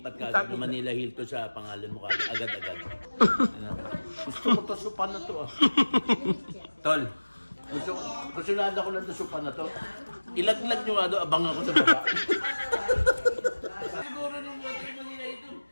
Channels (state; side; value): inverted; both; correlation -1.00